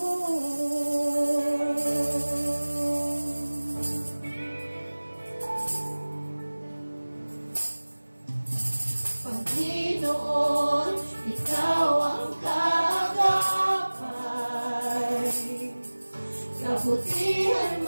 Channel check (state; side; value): inverted; both; correlation -1.00